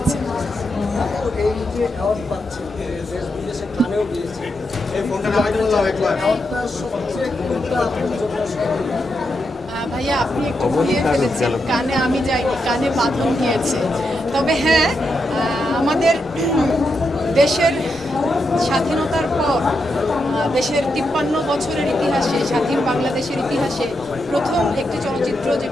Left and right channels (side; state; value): both; normal; correlation 0.84